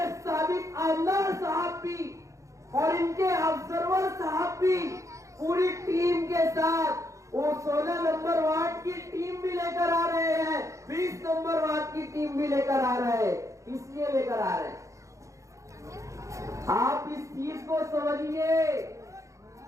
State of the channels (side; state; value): left; late; 0.15 ms